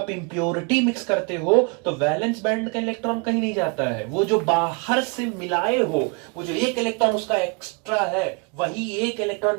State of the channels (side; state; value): left; quieter; 33.7 dB